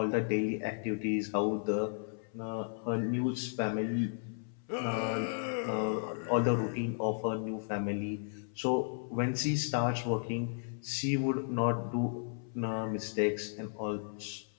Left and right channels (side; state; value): right; silent; 55 dB below the other